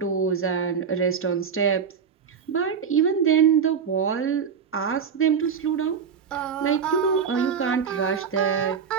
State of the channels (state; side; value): quieter; left; 6.7 dB